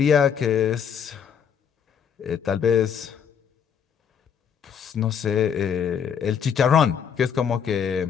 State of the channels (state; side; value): quieter; right; 7.6 dB